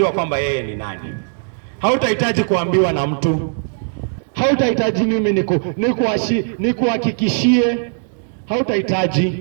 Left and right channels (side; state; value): left; silent; 67 dB below the other